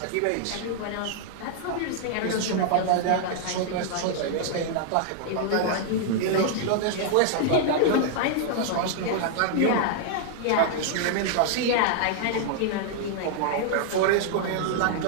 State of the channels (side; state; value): both; different; correlation 0.00